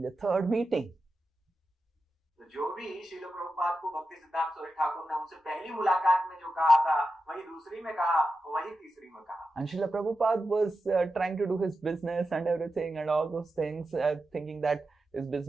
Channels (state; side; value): normal; both; correlation 0.90